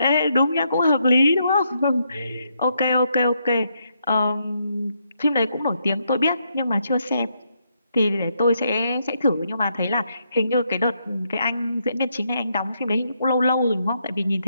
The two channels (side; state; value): both; inverted; correlation -0.78